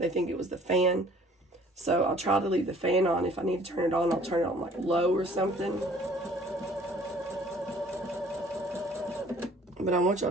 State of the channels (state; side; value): normal; both; correlation 0.54